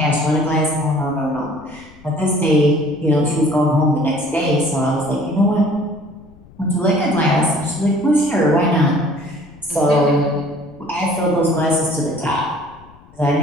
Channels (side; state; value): left; noise; rumble, 25 dB below the sound